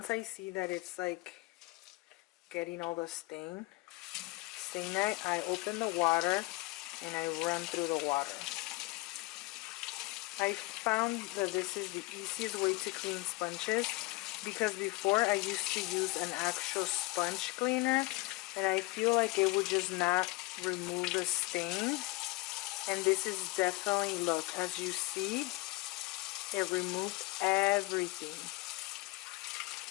I see that it's like getting all the stain, I open the water and I run through the water. I found that this is the easiest way to clean sponges, because before I used to use an actual sponge cleaner and I feel like it would just not remove the stain. And this is definitely, look, as you see, it removed everything.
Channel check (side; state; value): right; quieter; 22.6 dB